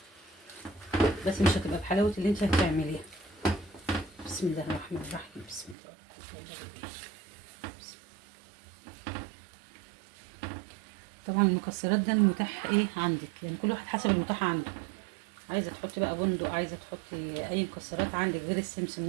بس مش هتبقى بحلاوه اللي انت هتعمليها. بسم الله الرحمن الرحيم. بسم الله الرحمن الرحيم. طبعا المكسرات ده المتاح ايه عندك، يعني كل واحد حسب المتاح عنده. عايزه تحطي بقى بندق، عايزه تحطي اي مكسرات عندك غير السمسم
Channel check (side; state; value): left; drops out; at 5.8 s